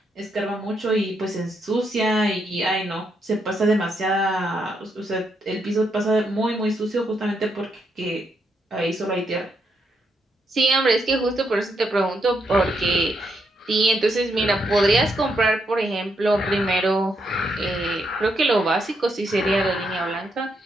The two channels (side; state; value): both; normal; correlation 0.79